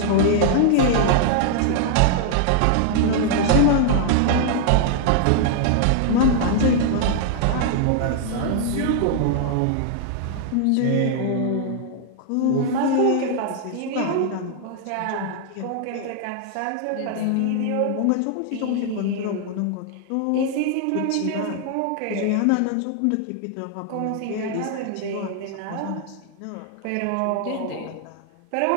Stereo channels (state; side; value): different; both; correlation 0.00